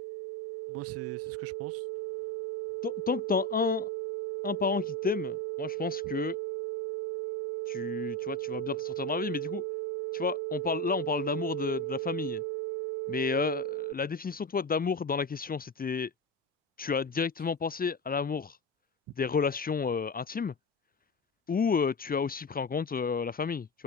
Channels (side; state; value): both; normal; correlation 0.19